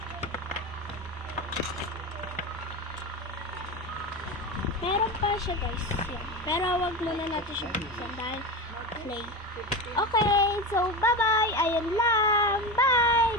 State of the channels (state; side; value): normal; both; correlation 0.22